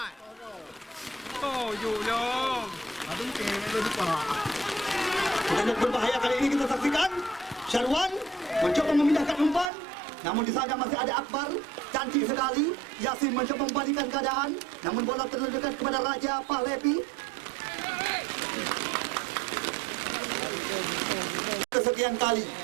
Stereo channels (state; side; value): drops out; left; at 9.7 s